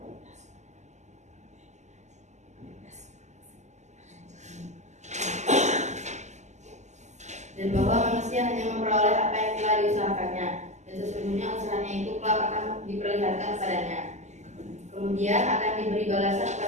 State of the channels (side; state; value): left; late; 0.34 ms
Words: Dan bahwa manusia hanya memperoleh apa yang telah diusahakannya, dan sesungguhnya usahanya itu kelak akan diperlihatkan kepadanya. Kemudian akan diberi balasan